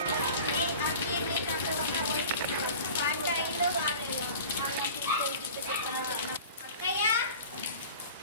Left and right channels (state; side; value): inverted; both; correlation -0.40